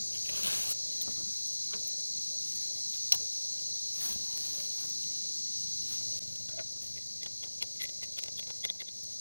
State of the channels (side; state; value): both; inverted; correlation -1.00